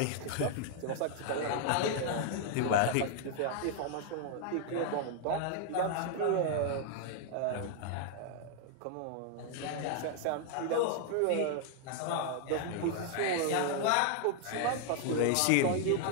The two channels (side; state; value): both; different; correlation 0.00